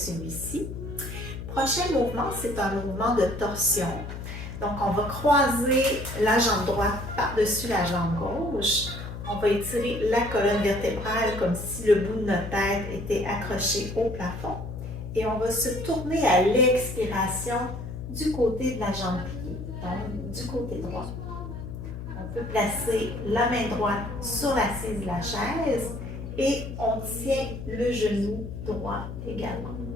Prochain mouvement, c'est un mouvement de torsion. Donc, on va croiser la jambe droite par-dessus la jambe gauche. On va étirer la colonne vertébrale comme si le bout de notre tête était accroché au plafond. Et on va se tourner à l'expiration du côté de la jambe pliée, donc du côté droit. On peut placer la main droite sur l'assise de la chaise et on tient le genou droit également.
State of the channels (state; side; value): noise; left; hum, 8 dB below the sound